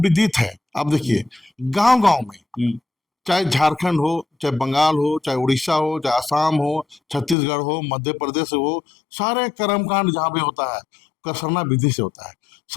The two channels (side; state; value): right; drops out; at 7.4 s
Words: विदित है। आप देखिए गांव गांव में, चाहे झारखंड हो, चाहे बंगाल हो, चाहे उड़ीसा हो, चाहे आसाम हो, छत्तीसगढ़ हो, मध्य प्रदेश हो, सारे कर्मकांड जहाँ पे होता है उसका सरना विधि से होता है।